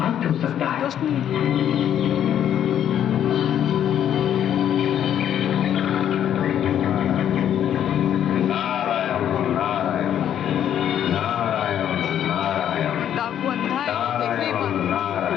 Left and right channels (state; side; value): quieter; right; 10.1 dB